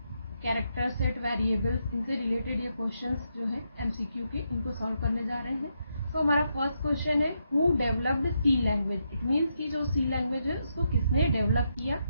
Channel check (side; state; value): both; inverted; correlation -0.81